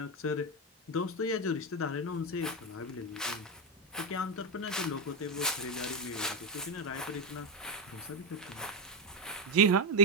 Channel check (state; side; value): normal; both; correlation 0.09